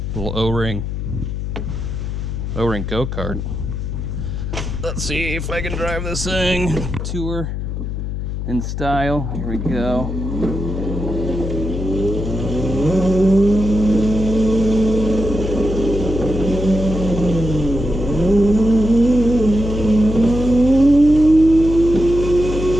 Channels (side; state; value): left; noise; hum, 4 dB below the sound